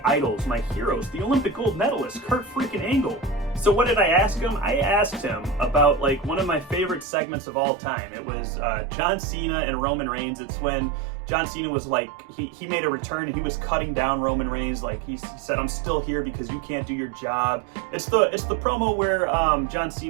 idols, my heroes, the Olympic gold medalist, Kurt freaking Angle. So what did I ask him? I asked him about like one of my favorite segments of all time. It was John Cena and Roman Reigns. It's when John Cena was like, he made a return and he was cutting down Roman Reigns. Like he said, I'm still here because you can't do your job. It's the promo where John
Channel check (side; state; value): left; drops out; at 7.1 s